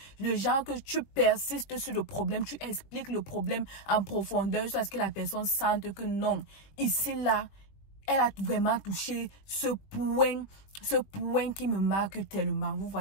Le genre que tu persistes sur le problème, tu expliques le problème en profondeur jusqu'à ce que la personne sente que non, ici, là, elle a vraiment touché ce point qui me marque tellement. Vous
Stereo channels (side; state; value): right; late; 21 ms